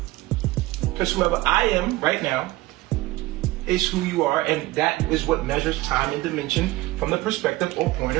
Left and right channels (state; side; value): quieter; left; 19.1 dB